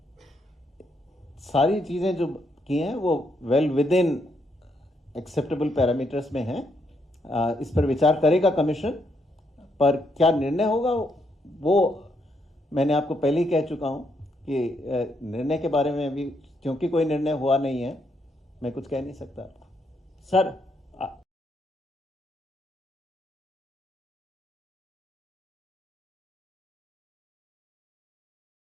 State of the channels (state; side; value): normal; both; correlation 0.76